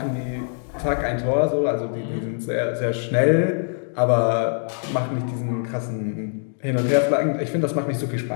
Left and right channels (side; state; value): right; silent; digital silence